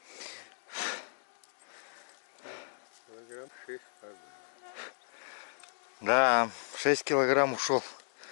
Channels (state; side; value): silent; right; digital silence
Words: Килограмм 6 каждый. Да, 6 килограмм ушел.